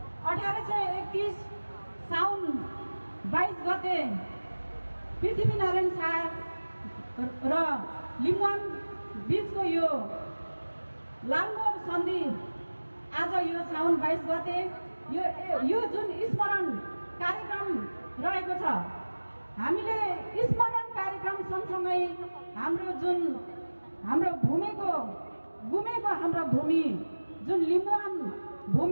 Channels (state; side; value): inverted; both; correlation -1.00